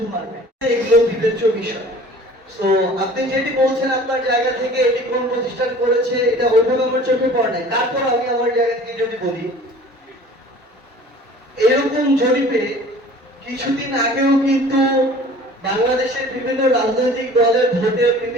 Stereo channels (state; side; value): normal; both; correlation 0.46